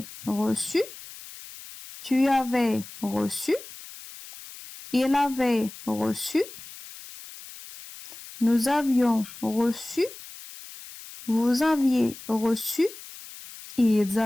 reçu, tu avais reçu, il avait reçu, nous avions reçu, vous aviez reçu, ils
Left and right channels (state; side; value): noise; left; hiss, 16 dB below the sound